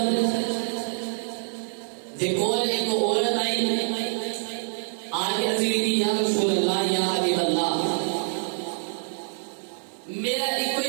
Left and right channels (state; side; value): silent; left; digital silence